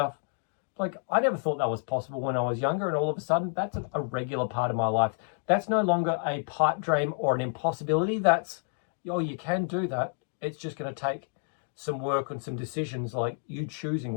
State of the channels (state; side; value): silent; right; 58 dB below the other